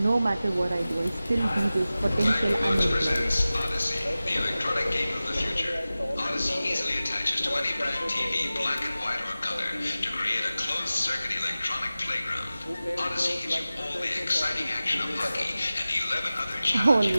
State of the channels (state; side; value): inverted; both; correlation -0.96